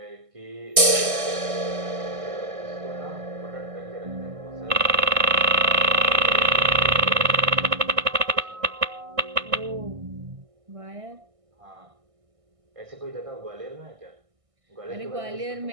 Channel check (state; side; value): late; left; 1.6 ms